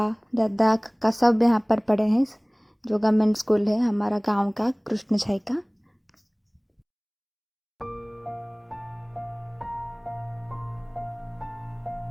दादा काका सब यहाँ पर पढ़े हैं। जो गवर्नमेंट स्कूल है हमारा गांव का, कृष्ण छाई का।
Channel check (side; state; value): both; identical; correlation 1.00